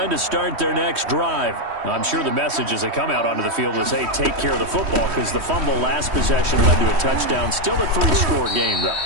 to start their next drive. I'm sure the message as they come out onto the field is, hey, take care of the football, because the fumble last possession led to a touchdown. Still a 3-score game, though.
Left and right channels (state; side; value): late; left; 3.1 ms